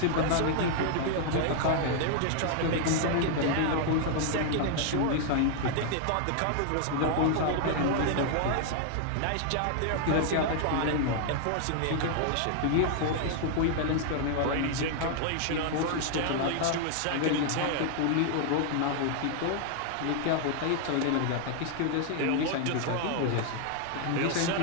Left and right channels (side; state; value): both; different; correlation 0.00